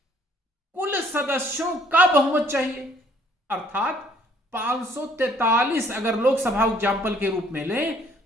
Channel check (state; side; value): normal; both; correlation 0.61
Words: कुल सदस्यों का बहुमत चाहिए, अर्थात 543 अगर लोकसभा एग्जाम्पल के रूप में लें